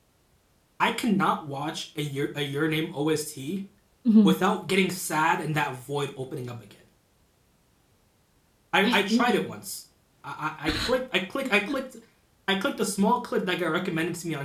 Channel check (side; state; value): both; identical; correlation 1.00